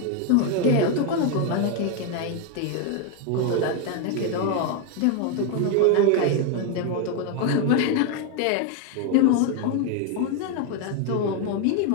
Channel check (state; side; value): different; both; correlation 0.01